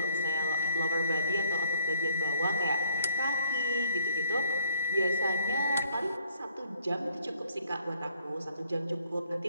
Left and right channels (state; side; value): inverted; both; correlation -0.62